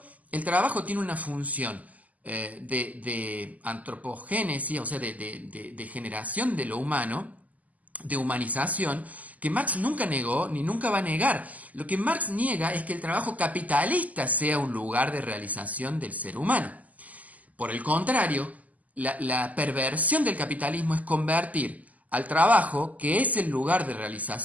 el trabajo tiene una función de antropogénesis, o sea, de generación de lo humano, de humanización, que Marx nunca negó ni nunca va a negar. Lo que Marx niega es que el trabajo capitalista sea un lugar de realización del ser humano. Por el contrario, la perversión del capitalismo es convertir al trabajo, que es el lugar de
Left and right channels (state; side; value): late; left; 0.076 ms